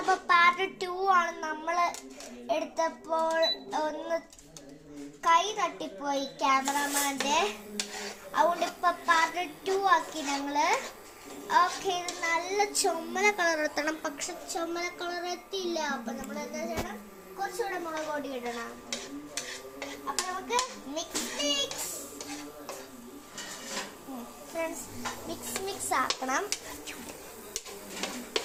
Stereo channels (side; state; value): both; identical; correlation 1.00